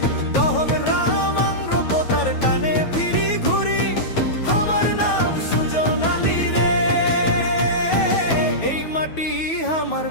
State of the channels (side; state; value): right; late; 9.2 ms